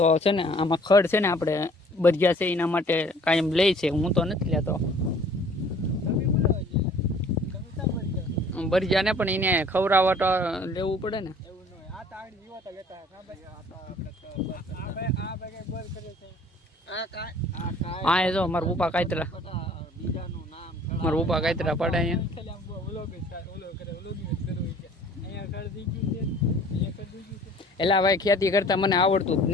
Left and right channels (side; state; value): both; normal; correlation 0.53